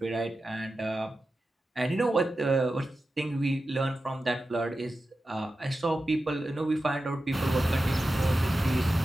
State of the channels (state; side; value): normal; both; correlation 0.92